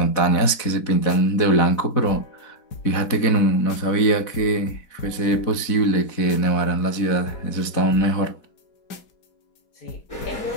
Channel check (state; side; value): late; right; 4.1 ms